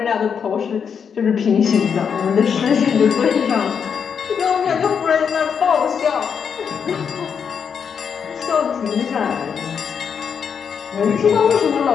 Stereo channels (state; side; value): quieter; right; 6.9 dB